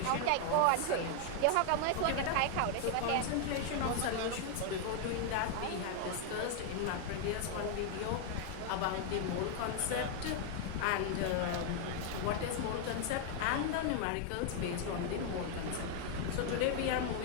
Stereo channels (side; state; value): both; different; correlation 0.00